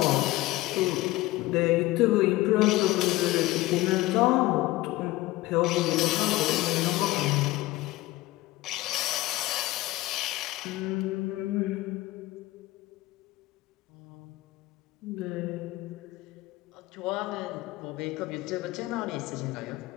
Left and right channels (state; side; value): quieter; right; 18.5 dB